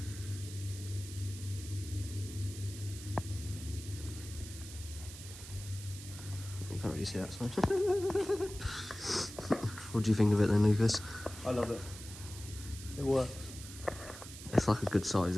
You can't really see that side. What do you think of it then, Lucas? I love it. It works. It's like a good size,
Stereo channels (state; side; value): noise; right; hiss, 13 dB below the sound